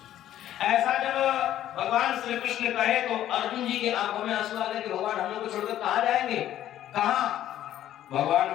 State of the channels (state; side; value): quieter; right; 12.2 dB